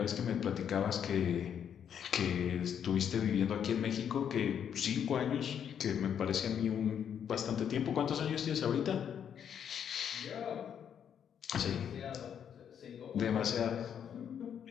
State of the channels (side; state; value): right; quieter; 8.5 dB